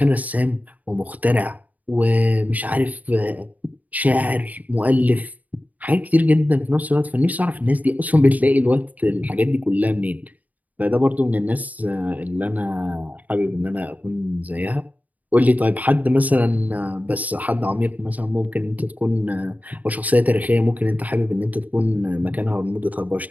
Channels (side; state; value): left; late; 0.076 ms